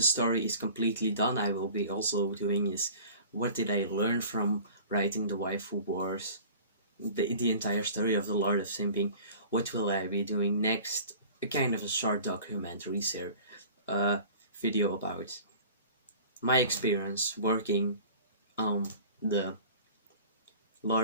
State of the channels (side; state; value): both; inverted; correlation -0.43